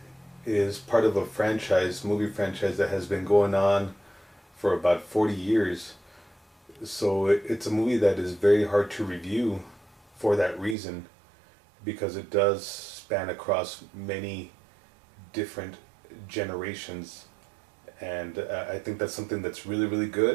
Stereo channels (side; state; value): left; drops out; at 10.8 s